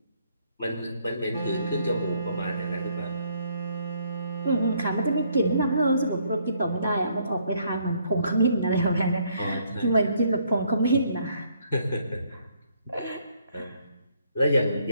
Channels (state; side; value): inverted; both; correlation -0.68